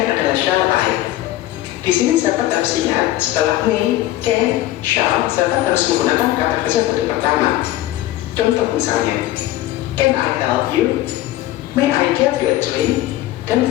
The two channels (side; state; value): right; quieter; 15.1 dB